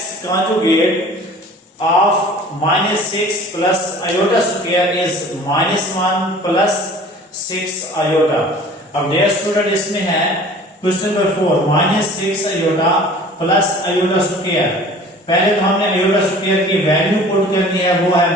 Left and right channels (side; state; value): both; normal; correlation 0.46